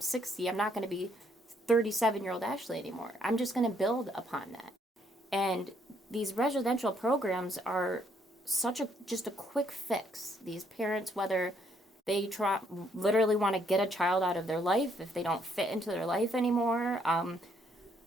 I'm not going to be 37-year-old Ashley anymore. I'm just going to build upon that. And these residential programs are just a quick fix. These parents, whether they literally want to get a child out of their life, if they don't fit into their life anymore,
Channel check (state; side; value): normal; both; correlation 0.70